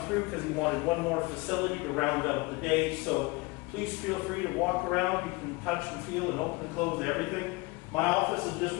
through because he wanted one more facility to round out the day. So please feel free to walk around. You can touch and feel and open and close everything. My office is just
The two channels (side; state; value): right; quieter; 24.6 dB